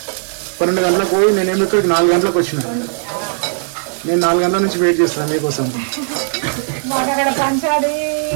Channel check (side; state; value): left; silent; digital silence